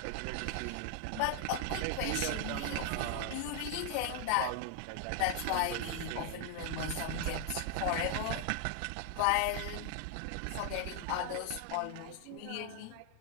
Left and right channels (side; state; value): both; different; correlation 0.00